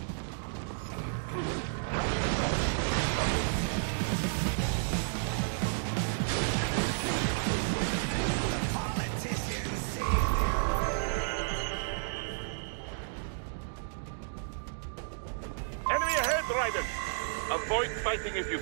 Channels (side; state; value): left; silent; digital silence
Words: Enemy ahead, Raiden! Avoid fighting if you